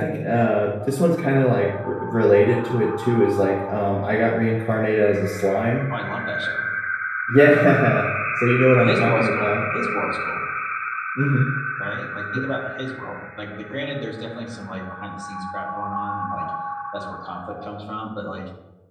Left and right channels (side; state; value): both; identical; correlation 1.00